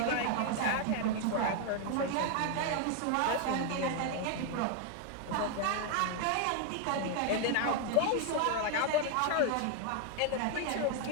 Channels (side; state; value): both; different; correlation 0.00